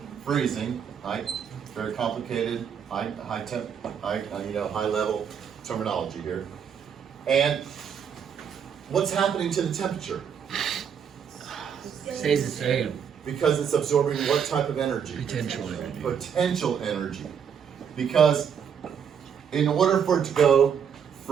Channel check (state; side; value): quieter; left; 7.6 dB